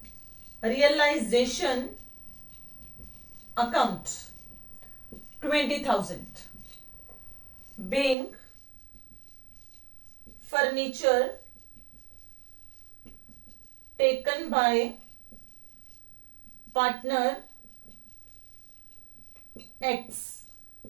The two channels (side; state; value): left; drops out; at 8.2 s